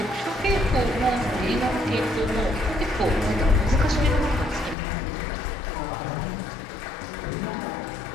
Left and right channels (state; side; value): drops out; right; at 4.8 s